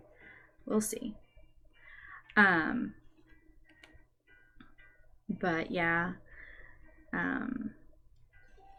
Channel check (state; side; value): identical; both; correlation 1.00